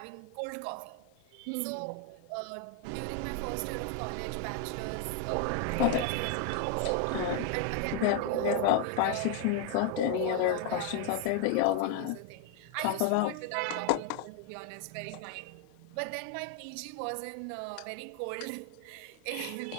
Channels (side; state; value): both; different; correlation 0.00